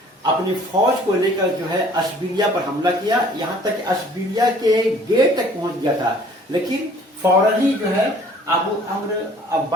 अपनी फौज को लेकर जो है अशबिलिया पर हमला किया। यहाँ तक अशबिलिया के गेट तक पहुंच गया था, लेकिन फौरन ही जो है अबू अम्र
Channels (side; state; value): both; normal; correlation 0.54